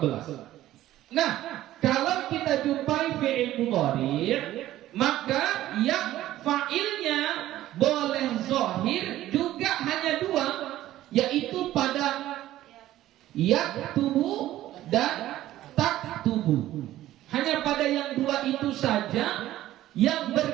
Nah, kalau kita jumpai fi'il mudhari, maka yang fa'ilnya boleh zahir juga hanya dua, yaitu pada yaktubu dan taktubu. Hanya pada yang dua itu saja yang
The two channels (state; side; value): quieter; left; 14.2 dB